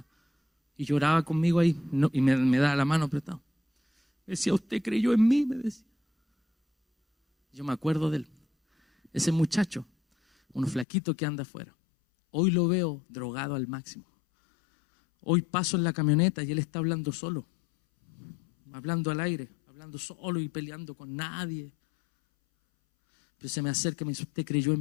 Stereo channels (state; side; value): drops out; right; at 10.9 s